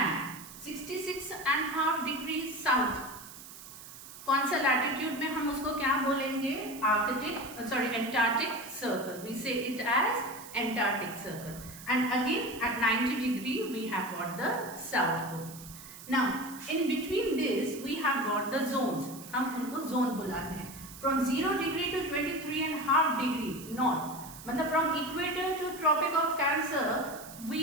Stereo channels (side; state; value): right; noise; hiss, 15 dB below the sound